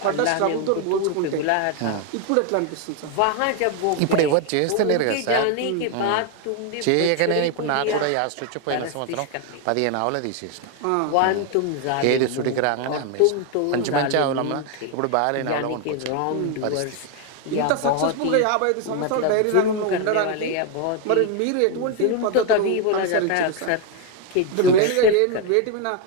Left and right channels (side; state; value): both; different; correlation 0.01